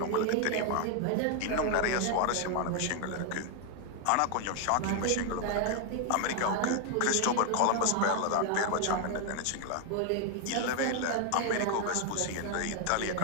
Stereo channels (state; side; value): different; both; correlation 0.01